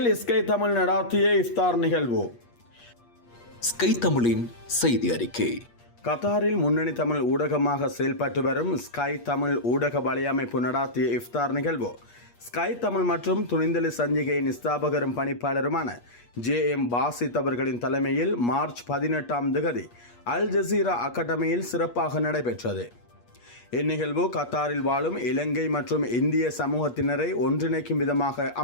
ஸ்கை தமிழ் நடாத்திய இஃப்தார் நிகழ்வு. ஸ்கை தமிழின் செய்தி அறிக்கை. கத்தாரில் முன்னணி தமிழ் ஊடகமாக செயல்பட்டு வரும் ஸ்கை தமிழ் ஊடக வலையமைப்பு நடாத்திய இஃப்தார் நிகழ்வு ஸ்கை தமிழ் மற்றும் துணிந்தலி சஞ்சிகையின் ஸ்தாபகரும் பணிப்பாளருமான JM பாசித் அவர்களின் தலைமையில் மார்ச் 18 அல் ஜசீரா அகாடமியில் சிறப்பாக நடைபெற்றது. இந்நிகழ்வு கத்தாரில் வாழும் இலங்கை மற்றும் இந்திய சமூகத்தினரை ஒன்றிணைக்கும் விதமாக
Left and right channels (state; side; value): late; right; 8.4 ms